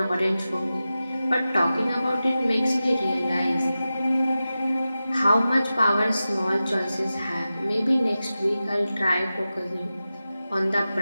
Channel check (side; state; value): both; inverted; correlation -0.94